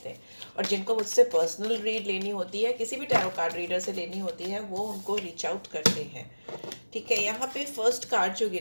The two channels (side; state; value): both; inverted; correlation -1.00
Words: हैं। और जिनको मुझसे पर्सनल रीड लेनी होती है, किसी भी टैरो कार्ड रीडर से लेनी होती है, वो उनको रीच आउट करते हैं, ठीक है। यहाँ पे फर्स्ट कार्ड जो